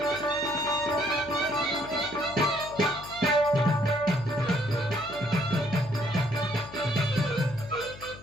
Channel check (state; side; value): noise; left; hum, 18 dB below the sound